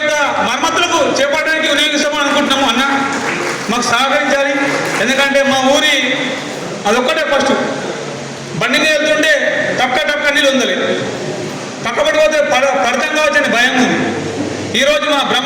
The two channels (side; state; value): both; identical; correlation 1.00